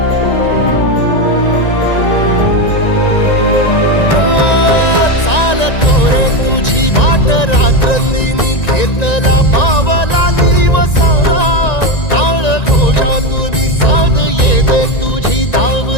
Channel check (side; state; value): right; late; 1.9 ms